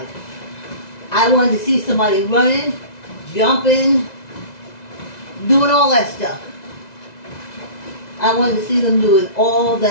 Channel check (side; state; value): right; late; 2.0 ms